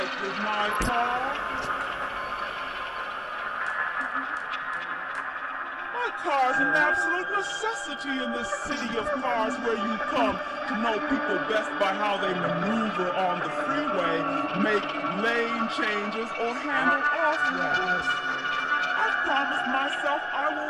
with my car. My car's an absolute necessity in this city of cars where you come to know people best by how they maneuver on the freeway, make lane changes, or handle off-ramps. I've promised myself I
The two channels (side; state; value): both; identical; correlation 1.00